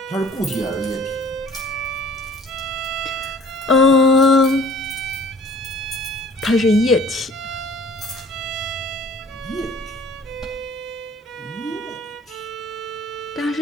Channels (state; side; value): normal; both; correlation 0.51